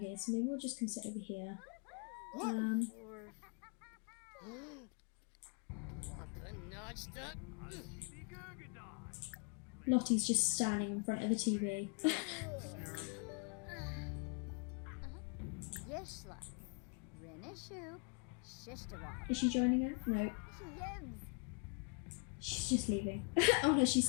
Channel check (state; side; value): quieter; right; 35.3 dB